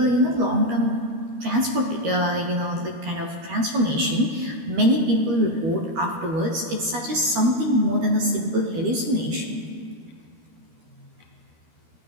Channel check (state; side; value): late; left; 13 ms